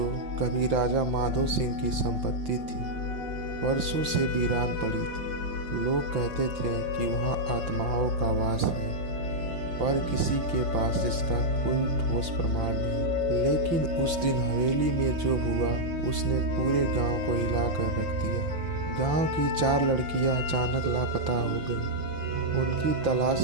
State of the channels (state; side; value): late; left; 6.0 ms